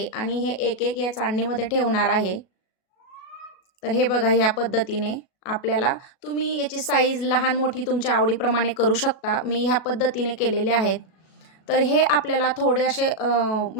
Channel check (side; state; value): right; late; 37 ms